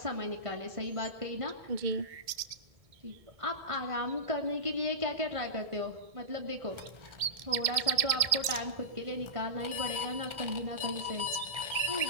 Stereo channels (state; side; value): late; left; 2.1 ms